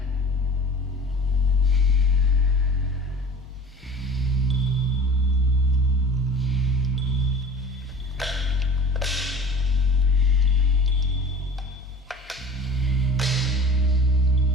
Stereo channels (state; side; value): normal; both; correlation 0.41